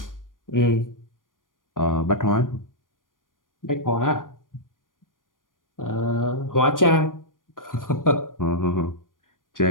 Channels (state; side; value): late; right; 0.90 ms